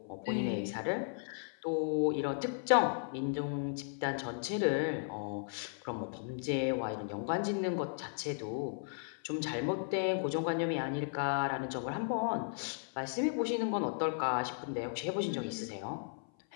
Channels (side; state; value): right; silent; 54 dB below the other